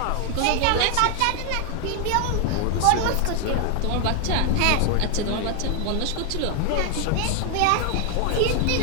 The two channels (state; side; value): different; both; correlation 0.00